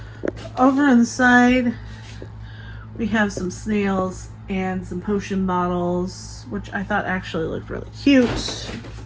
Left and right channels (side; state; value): both; identical; correlation 1.00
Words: Over on the side, we have some snails and some potion bottles, which I thought actually looked really cute.